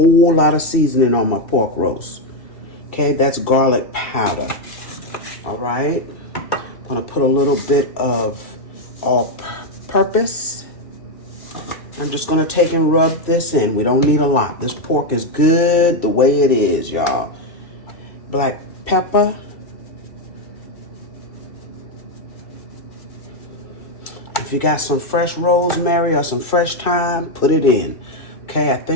lot of seasoning on my pork roast. Okay, that's garlic powder. All right. I'm going to put a little bit of all-purpose. I'm just going to take and rub this in. We don't need a lot. This pork is good the way it is, y'all. Black pepper. If you got some fresh rosemary or some fresh thyme, put it in. Okay, I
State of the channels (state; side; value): late; right; 2.3 ms